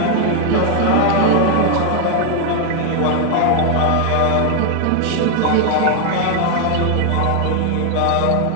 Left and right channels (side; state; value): both; different; correlation 0.00